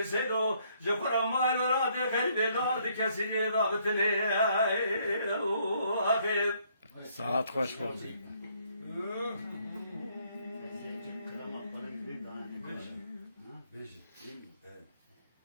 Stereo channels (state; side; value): inverted; both; correlation -0.67